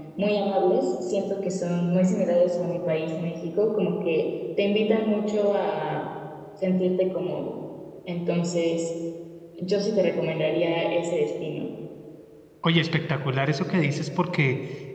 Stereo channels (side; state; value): both; identical; correlation 1.00